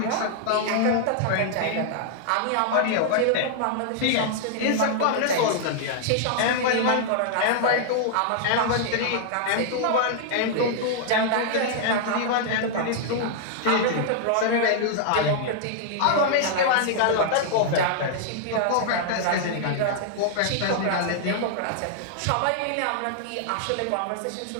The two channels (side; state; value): both; different; correlation -0.01